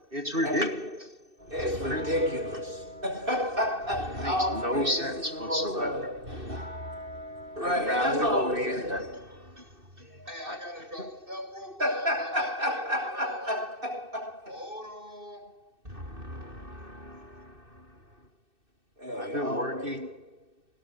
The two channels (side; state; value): left; late; 2.6 ms